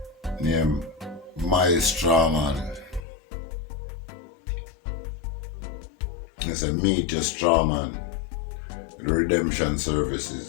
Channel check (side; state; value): right; drops out; at 3.0 s